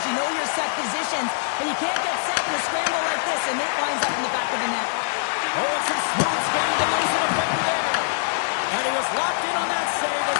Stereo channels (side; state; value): right; silent; digital silence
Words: you know your set positions, but you can't get set in a scramble like this, and it winds up in the back of the net. Oh, it's a smooth skating to lose a defender there. And he was locked in on that save